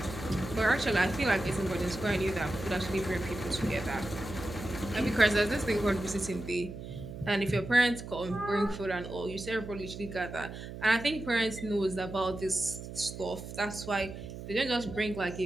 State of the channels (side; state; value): right; noise; hum, 10 dB below the sound